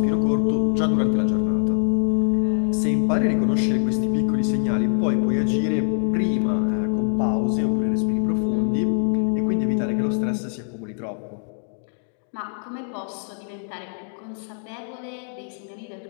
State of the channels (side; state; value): right; silent; digital silence